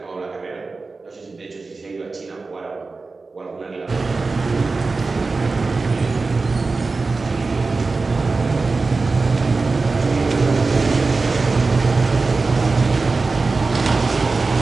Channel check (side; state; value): left; quieter; 3.9 dB